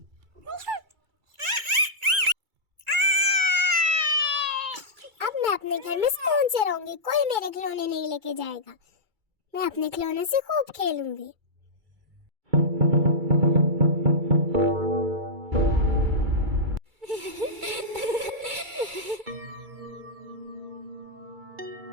अब मैं अपने घर में सुकून से रहूंगी, कोई मेरे खिलौने नहीं लेके जाएगा। मैं अपने खिलौने से खूब खेलूंगी।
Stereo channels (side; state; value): left; late; 2.3 ms